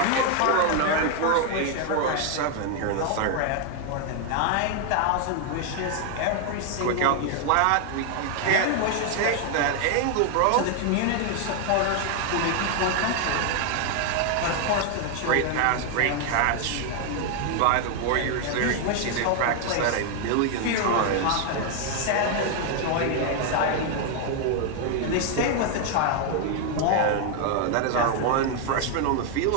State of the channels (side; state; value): both; different; correlation 0.00